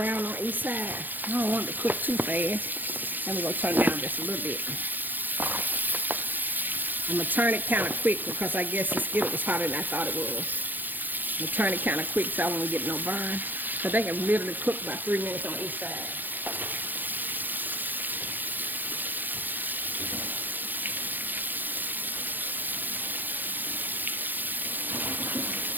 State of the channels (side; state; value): left; late; 0.087 ms